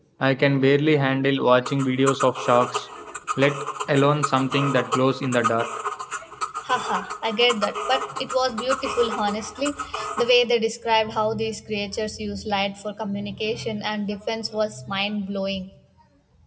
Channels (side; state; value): both; identical; correlation 1.00